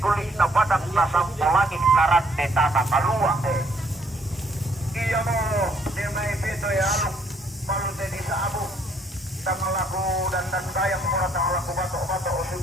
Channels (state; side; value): normal; both; correlation 0.66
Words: na badak na sampulangin naran de tanah kalua iya mo di may pito alok palute di sa abo tangalaku dan gayang mura tangalaku bato o